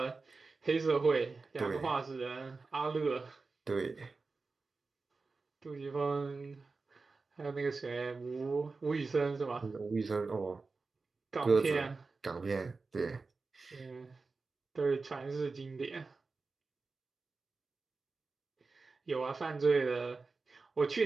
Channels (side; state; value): left; quieter; 4.1 dB